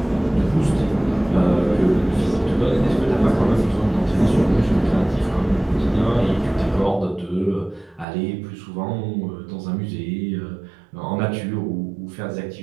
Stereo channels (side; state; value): left; drops out; at 8.1 s